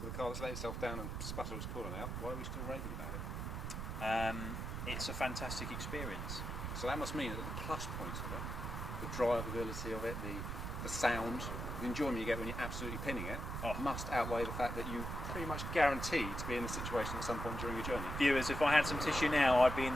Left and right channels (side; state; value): right; noise; rumble, 4 dB below the sound